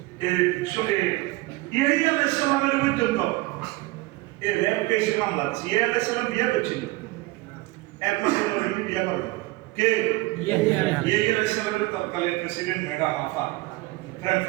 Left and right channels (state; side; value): quieter; left; 20.8 dB